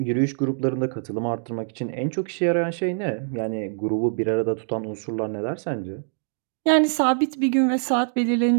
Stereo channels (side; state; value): left; silent; digital silence